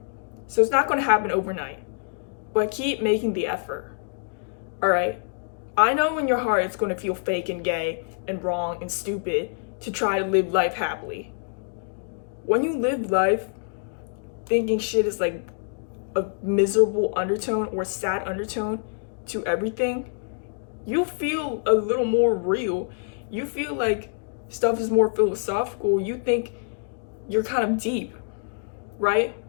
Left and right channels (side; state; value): right; silent; digital silence